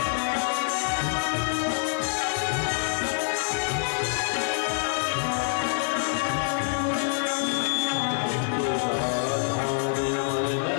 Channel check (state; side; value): silent; right; digital silence